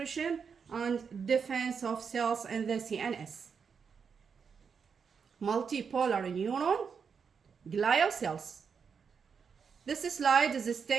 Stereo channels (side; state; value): left; quieter; 6.2 dB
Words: and defense of cells in the CNS. Multipolar neuron, glial cells. This slide is